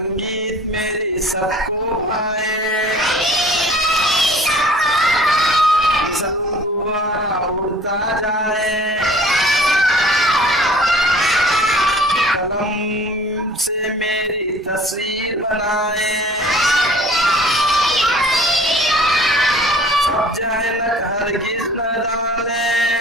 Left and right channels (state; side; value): normal; both; correlation 0.50